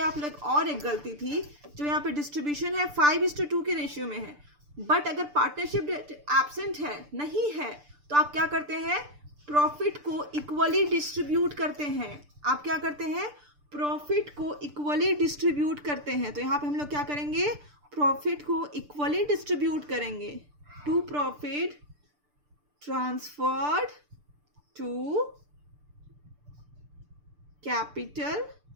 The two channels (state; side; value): late; left; 6.8 ms